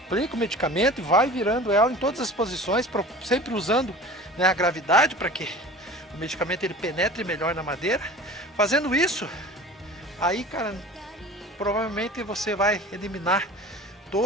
aplica o medicamento e vai virando ela em todas as posições, sempre usando, né, a gravidade para que o medicamento ele penetre melhor na madeira. Fazendo isso, aí, cara, provavelmente você vai eliminar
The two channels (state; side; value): normal; both; correlation 0.39